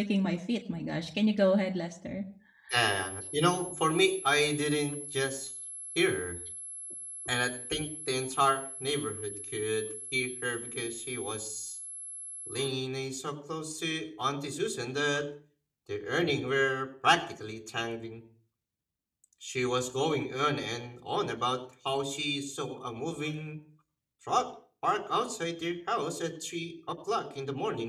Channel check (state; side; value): identical; both; correlation 1.00